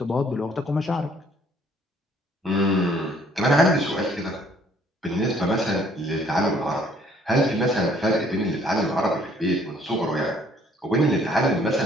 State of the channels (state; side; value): normal; both; correlation 0.61